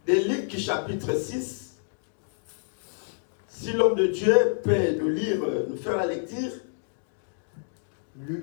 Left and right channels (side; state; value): right; silent; digital silence